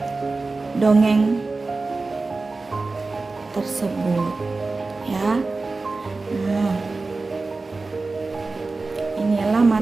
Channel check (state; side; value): quieter; left; 3.7 dB